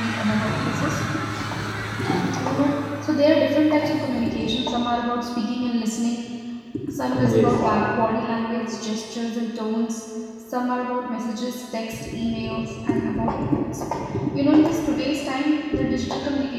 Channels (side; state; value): both; identical; correlation 1.00